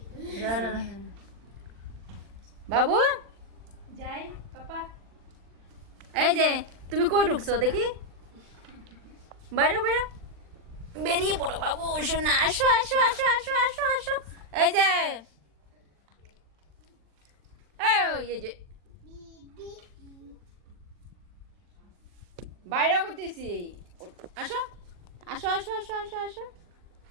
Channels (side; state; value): left; late; 40 ms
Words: বাবু যাই পাপা। এই যে তুমি কই ঢুকছো দেখি, বাইরে বাইরে বেরিয়ে পড়ো বাবু, শোনা আসো আসো আসো আসো আসো আসো। এই যে এই যে বাইরেও করতেছি, আসো আসো আসো আসো আসো আসো